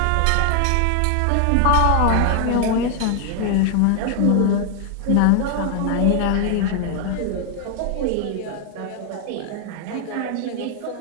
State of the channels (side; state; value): both; different; correlation 0.00